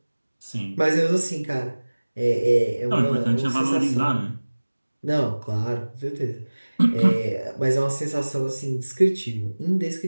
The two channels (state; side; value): inverted; both; correlation -1.00